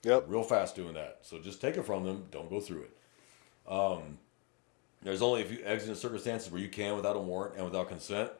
Yep. real fast doing that. So just take it from them. Don't go through it. There's only a few exigent circumstances where you can without a warrant and without consent.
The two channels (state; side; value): quieter; right; 32.6 dB